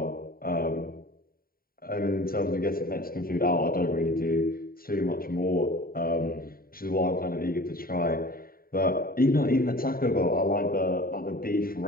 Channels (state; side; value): late; right; 0.43 ms